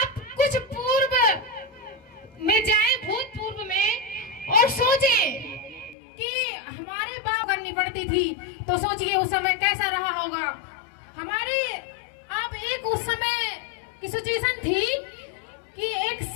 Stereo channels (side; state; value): right; drops out; at 6.0 s